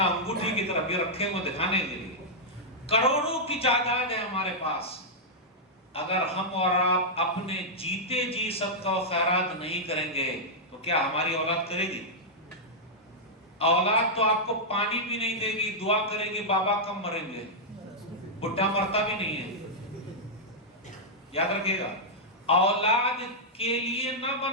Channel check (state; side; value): normal; both; correlation -0.07